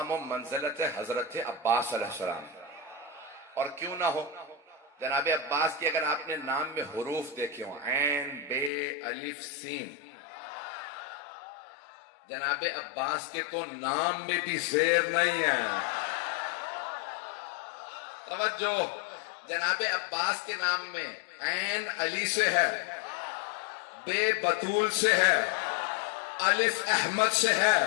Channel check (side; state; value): right; drops out; at 8.7 s